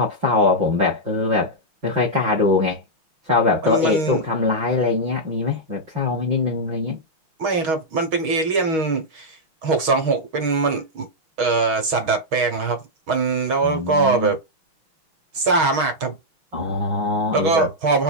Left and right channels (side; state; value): left; late; 6.3 ms